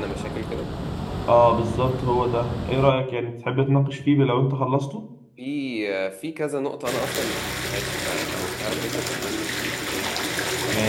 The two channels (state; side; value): identical; both; correlation 1.00